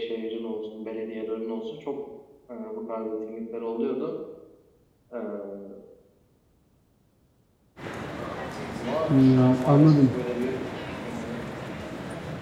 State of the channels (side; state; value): both; identical; correlation 1.00